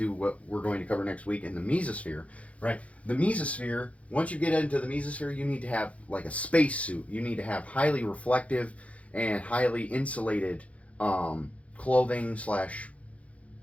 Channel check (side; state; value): right; late; 0.065 ms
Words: what we're going to cover next week in the mesosphere, right? The mesosphere, once you get into the mesosphere, you need to have like a space suit. You need to have highly reflective and highly insulated clothing